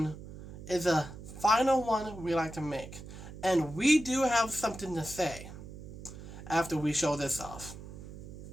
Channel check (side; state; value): right; noise; hum, 13 dB below the sound